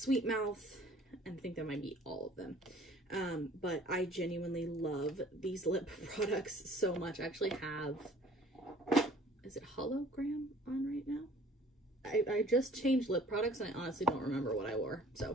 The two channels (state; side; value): normal; both; correlation 0.52